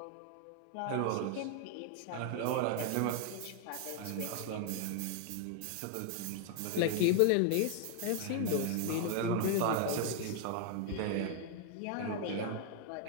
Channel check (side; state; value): both; different; correlation 0.00